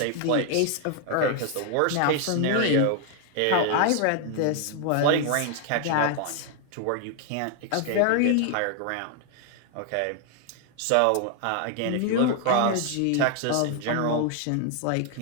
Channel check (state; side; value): different; both; correlation 0.00